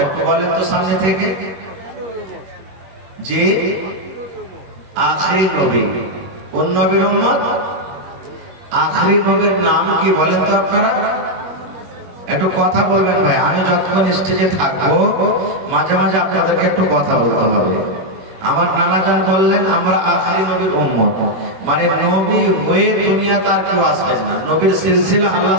একটু বলেন তো সামনে থেকে? যে আখিরি নবী। কোন নবীর উম্মত? আখিরি নবীর নাম কি বলেন তো আপনারা? একটু কথা বলবেন ভাই, আমি যতক্ষণ স্টেজে থাকবো মাঝে মাঝে আপনাদেরকে একটু কথা বলতে হবে। আমার নানাজান বললেন আমরা আখিরি নবীর উম্মত, মানে নবী হয়ে দুনিয়া তার কেউ আসবেন না, নবীর সিলসিলা আল্লাহ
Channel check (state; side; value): late; left; 21 ms